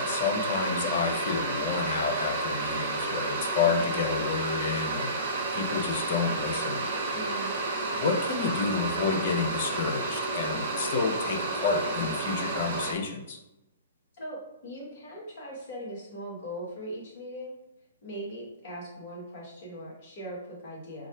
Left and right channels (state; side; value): inverted; both; correlation -0.36